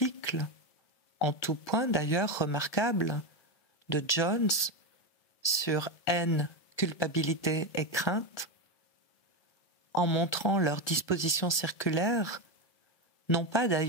en tout point d'ailleurs remarquable, de Jones sur haine, culpabilité et crainte, en montrant leur disposition circulaire, non pas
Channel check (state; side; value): late; right; 1.2 ms